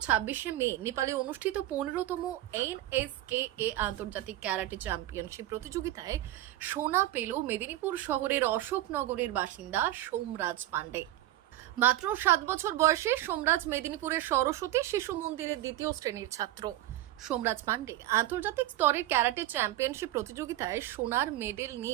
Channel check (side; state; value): left; quieter; 14.7 dB